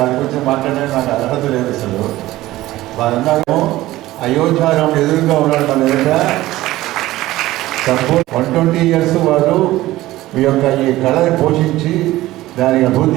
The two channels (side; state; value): left; quieter; 16.6 dB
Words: గురించి మాట్లాడడానికి నాకు అర్హత లేదు అసలు. వారన్నారేమో అయోధ్యారాముడు ఎదురుగా ఉన్నాడు మన ఎదుట. సంపూర్ణ 120 years వారు ఈ యొక్క ఈ కళని పోషించి దానికి